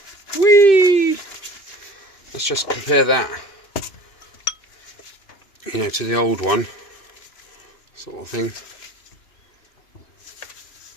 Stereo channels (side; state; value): right; late; 2.6 ms